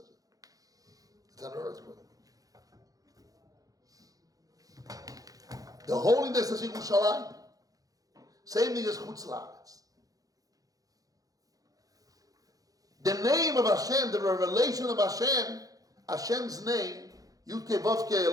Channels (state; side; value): late; left; 0.17 ms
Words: it's an earthquake. The holiness is Yerushalayim. Same thing as Chutz La'aretz. The name of Hashem, the revelation of Hashem, Hashem's name, Yudke, Vovke,